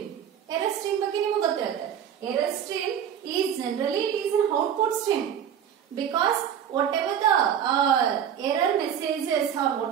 Error stream ಬಗ್ಗೆ ನಿಮಗೆ ಗೊತ್ತಿರುತ್ತೆ. Error stream is generally it is an output stream because whatever the error messages or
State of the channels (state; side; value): quieter; left; 8.9 dB